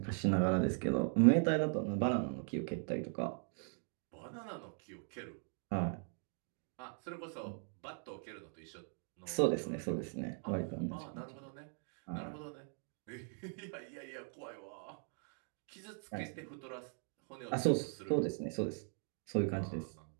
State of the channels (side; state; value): left; silent; 51 dB below the other